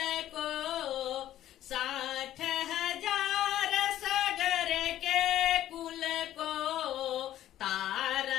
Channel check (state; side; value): quieter; right; 12.7 dB